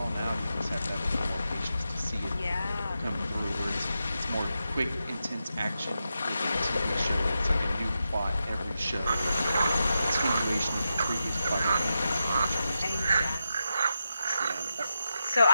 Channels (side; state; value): both; inverted; correlation -0.88